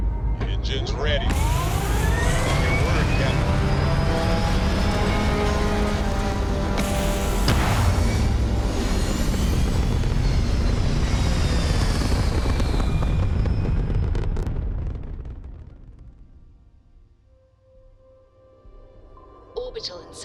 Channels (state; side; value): identical; both; correlation 1.00